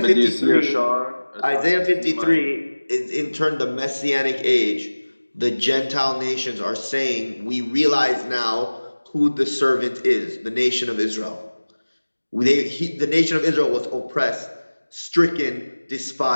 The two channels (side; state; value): both; inverted; correlation -1.00